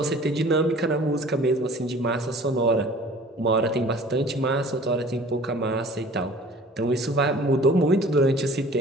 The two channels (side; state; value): both; normal; correlation 0.47